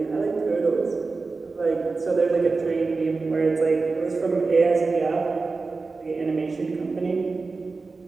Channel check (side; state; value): left; quieter; 4.0 dB